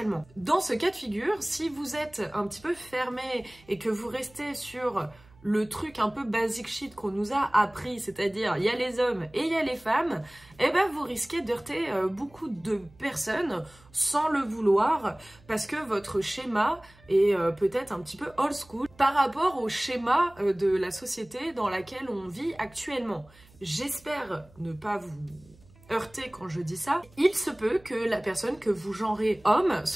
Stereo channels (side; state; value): right; noise; hum, 27 dB below the sound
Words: Dans ce cas de figure, si vous êtes un petit peu fermé et que vous restez sur le truc un peu basic shit qu'on nous a appris, c'est-à-dire il y a les hommes et il y a les femmes, eh ben vous risquez d'heurter beaucoup de personnes sans le vouloir parce que votre schéma est peut-être un petit peu old school par rapport au schéma de la société dans laquelle on vit actuellement. J'espère ne pas vous heurter quand je dis ça. Il se peut que la personne que vous genrez homme